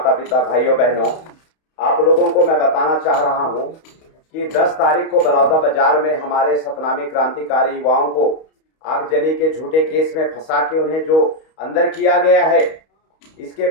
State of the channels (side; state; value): right; late; 31 ms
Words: पिता भाइयों बहनों, आप लोगों को मैं बताना चाह रहा हूं कि 10 तारीख को बलौदा बाजार में हमारे सतनामी क्रांतिकारी युवाओं को आगजनी के झूठे केस में फंसा के उन्हें जो अंदर किया गया है, इसके